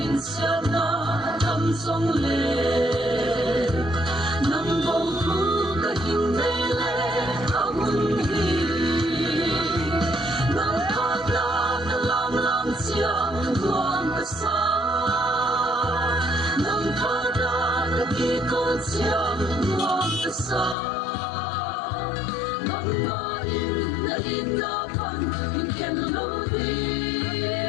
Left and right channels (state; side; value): drops out; right; at 20.8 s